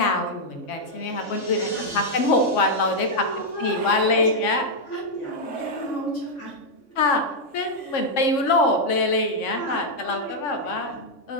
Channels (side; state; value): right; late; 3.6 ms